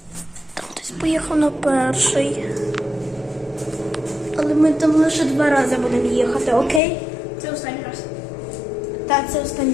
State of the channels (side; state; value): right; drops out; at 6.8 s